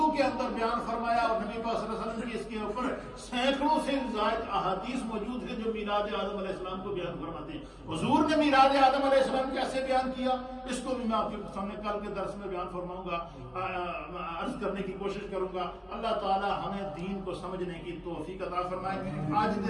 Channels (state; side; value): identical; both; correlation 1.00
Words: کے اندر بیان فرمایا، اور نبی پاک صلی اللہ علیہ وسلم کی اس کے اوپر سینکڑوں سے زائد احادیث موجود ہیں جو میلاد آدم علیہ السلام کو بیان فرماتے ہیں۔ حضور نے میلاد آدم علیہ السلام کیسے بیان کیا، اس کو بھی میں آپ کے سامنے کل کے درس میں بیان فرماؤں گا، عرض کرنے کی کوشش کروں گا۔ اللہ تعالی ہمیں دین کو سمجھنے کی توفیق عطا فرمائے۔ آج